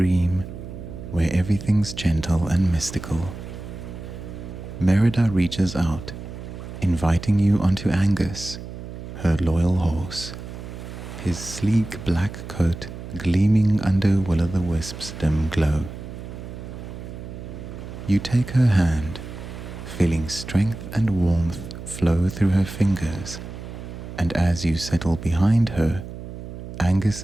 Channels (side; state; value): right; noise; hum, 11 dB below the sound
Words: where everything's gentle and mystical. Merida reaches out, inviting you onto Angus, her loyal horse, his sleek black coat gleaming under will-o'-the-wisp's dim glow. You take her hand, feeling strength and warmth flow through her fingers and as you settle behind her,